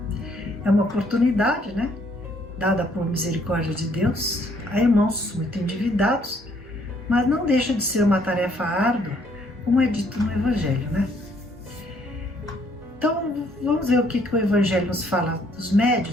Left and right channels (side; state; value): both; normal; correlation 0.66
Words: É uma oportunidade, dada por misericórdia de Deus, a irmãos muito endividados, mas não deixa de ser uma tarefa árdua, como é dito no Evangelho, Então, vamos ver o que o Evangelho nos fala dos